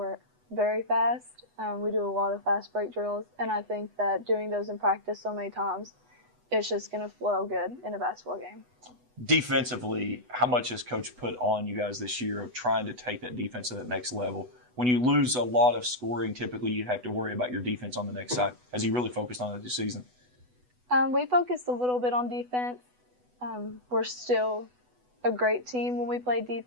very fast. We do a lot of fast break drills, and I think that doing those in practice so many times, it's just going to flow good in a basketball game. Defensively, how much has Coach put on you guys this year of trying to take that defense to that next level? When you lose a lot of scoring, typically you have to worry about your defense on the next side. Has he really focused on it this season? We focused a little bit on defense. We're still a great team when we play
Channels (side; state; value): left; late; 8.1 ms